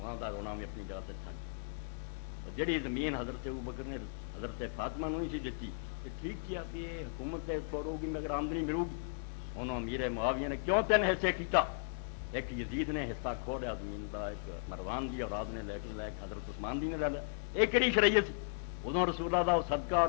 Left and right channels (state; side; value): silent; right; digital silence